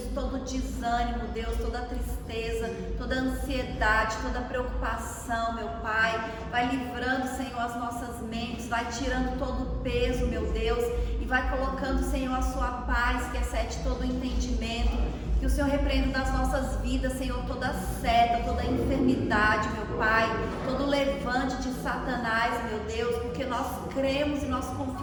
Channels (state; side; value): identical; both; correlation 1.00